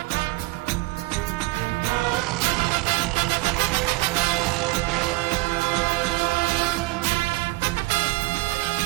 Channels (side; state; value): left; quieter; 21.7 dB